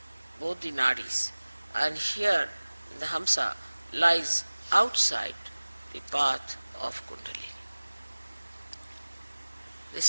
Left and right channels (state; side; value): inverted; both; correlation -1.00